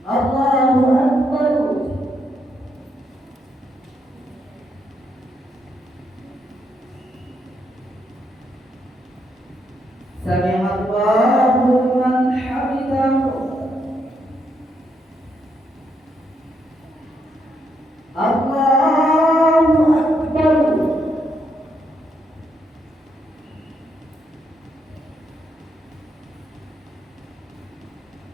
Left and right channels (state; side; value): normal; both; correlation 0.77